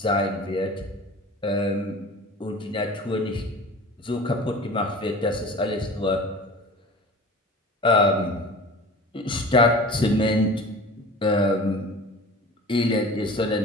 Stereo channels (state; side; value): normal; both; correlation 0.38